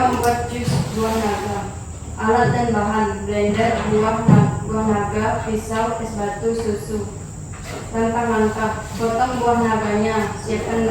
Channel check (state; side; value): identical; both; correlation 1.00